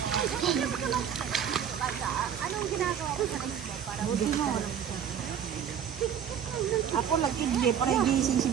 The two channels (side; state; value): left; quieter; 8.5 dB